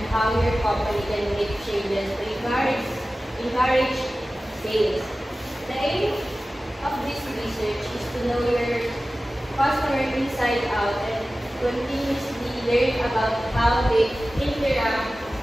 how your company can make changes to encourage sales. The aim of this research is to know your customer inside out and continuously learn about how they interact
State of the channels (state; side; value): normal; both; correlation 0.96